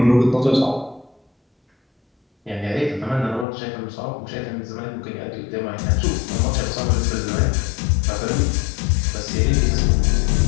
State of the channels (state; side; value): drops out; right; at 3.5 s